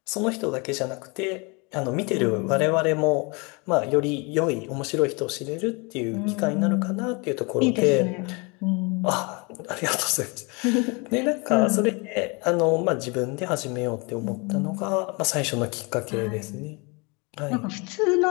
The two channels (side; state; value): right; quieter; 29.8 dB